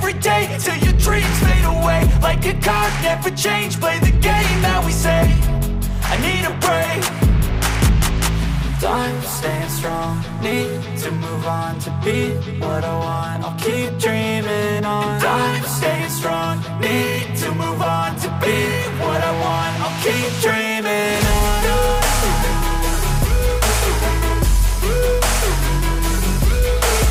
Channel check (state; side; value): identical; both; correlation 1.00